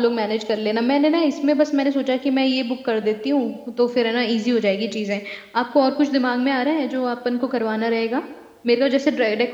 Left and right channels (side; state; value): both; identical; correlation 1.00